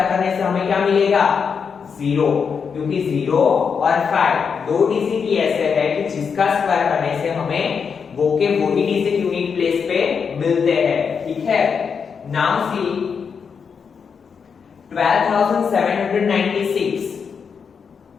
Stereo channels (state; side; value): quieter; right; 6.2 dB